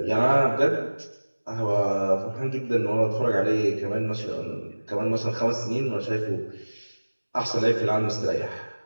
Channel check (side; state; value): both; inverted; correlation -1.00